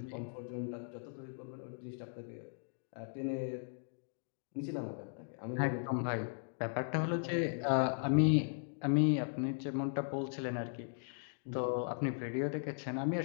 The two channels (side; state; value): right; silent; digital silence